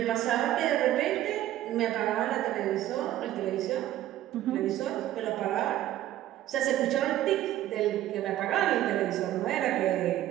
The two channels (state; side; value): quieter; left; 13.4 dB